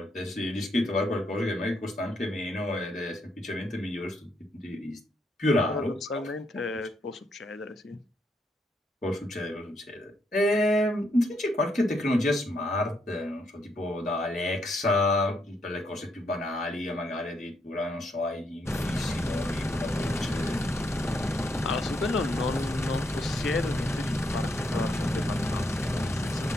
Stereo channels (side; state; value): both; normal; correlation 0.76